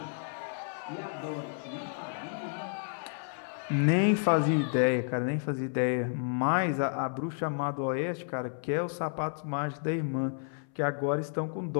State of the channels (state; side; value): silent; right; 57 dB below the other